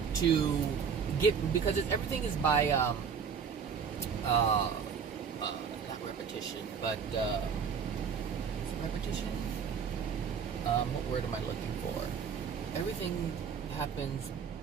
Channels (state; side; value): quieter; left; 6.6 dB